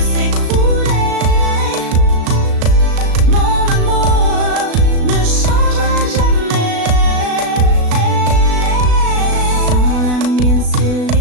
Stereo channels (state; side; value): late; left; 36 ms